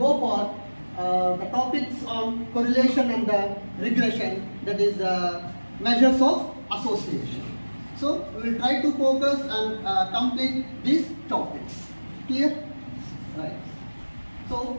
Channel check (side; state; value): both; inverted; correlation -1.00